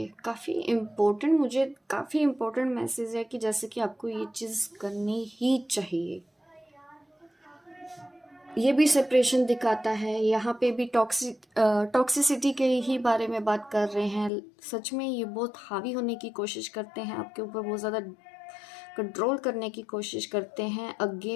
काफ़ी इम्पोर्टेंट, मुझे काफ़ी इम्पोर्टेंट मैसेज है कि जैसे कि आपको ये चीज़ करनी ही चाहिए। ये भी सेपरेशन दिखाता है, यहाँ पे भी टॉक्सिसिटी के ही बारे में बात कर रहे हैं। सच में ये बहुत हावी होने की कोशिश करते हैं आपके ऊपर, बहुत ज़्यादा कंट्रोल करने की कोशिश करते हैं।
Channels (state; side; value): drops out; right; at 14.3 s